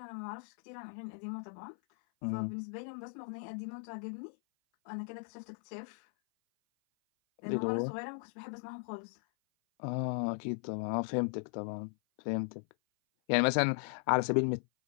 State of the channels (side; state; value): right; silent; 53 dB below the other